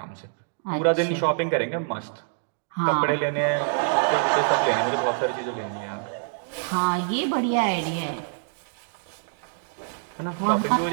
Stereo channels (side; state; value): left; silent; digital silence